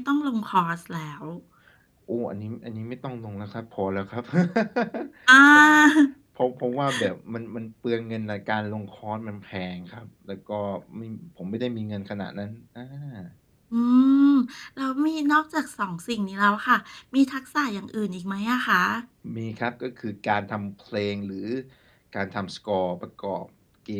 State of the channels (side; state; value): both; identical; correlation 1.00